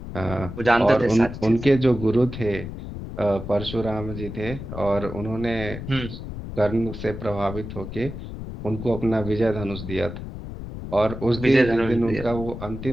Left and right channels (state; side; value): noise; left; rumble, 9 dB below the sound